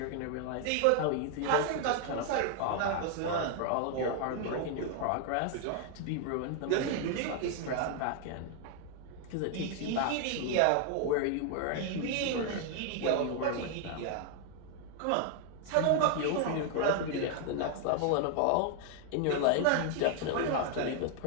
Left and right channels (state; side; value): different; both; correlation 0.00